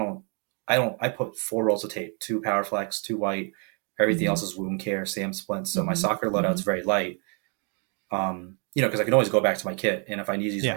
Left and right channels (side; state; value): left; quieter; 38.0 dB